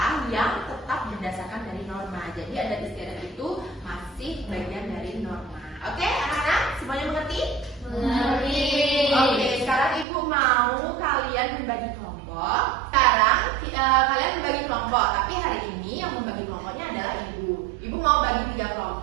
yang tetap berdasarkan dari norma. Jadi adat istiadat itu masih bagian dari norma. Oke, anak-anak semuanya mengerti? Mengerti. Oke, sekarang Ibu mau kalian membagi kelompok. Sekarang kalian membagi kelompok, tapi hari ini yang membagi kelompoknya adalah Ibu. Ibu mau bagi 3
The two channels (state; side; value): drops out; left; at 10.1 s